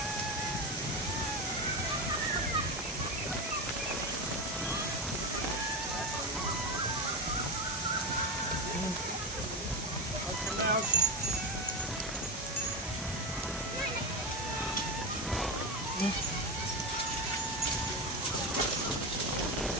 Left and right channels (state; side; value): normal; both; correlation 0.17